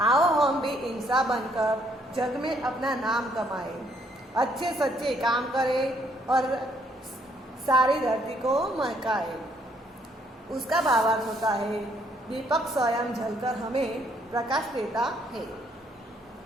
आओ हम भी इंसान बनकर जग में अपना नाम कमाए, अच्छे सच्चे काम करें और सारी धरती को महकाए। उसका भावार्थ होता है दीपक स्वयं जलकर हमें प्रकाश देता है।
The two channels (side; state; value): both; normal; correlation 0.68